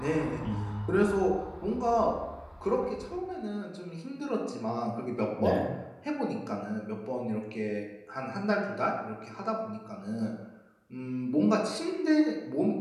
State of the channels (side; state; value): both; identical; correlation 1.00